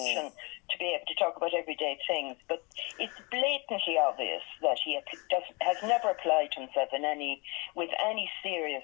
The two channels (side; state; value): right; quieter; 28.8 dB